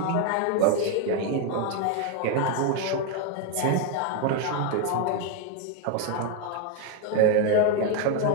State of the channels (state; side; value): different; both; correlation 0.01